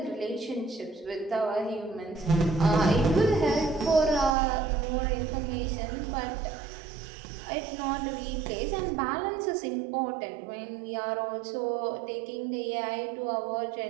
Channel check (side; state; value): left; drops out; at 4.4 s